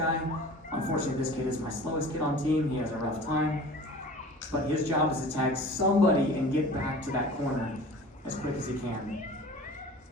unfortunately this kid is my slowest kid on team, he has a rough time, but his job is to tag somebody and get back to that corner as quick as he can.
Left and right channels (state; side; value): normal; both; correlation 0.41